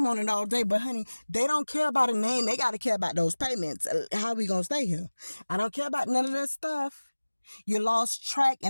on it all day, but honey, they don't care about a name. They got to care about those payments. How we gonna stay here? I don't care about none of that stuff. You lost track,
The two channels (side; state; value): both; inverted; correlation -1.00